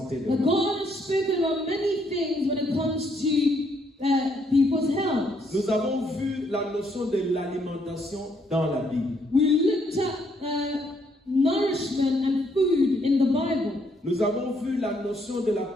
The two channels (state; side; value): normal; both; correlation 0.71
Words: de that l'homme. God has spoken about many things when it comes to people's health. Nous avons vu la notion de l'alimentation dans la Bible. We looked at nourishment and food in the Bible. Nous avons vu la notion de la